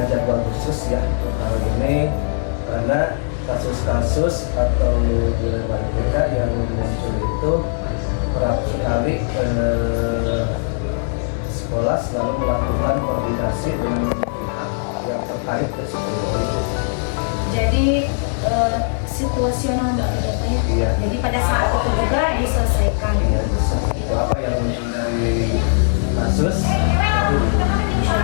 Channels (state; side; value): silent; right; digital silence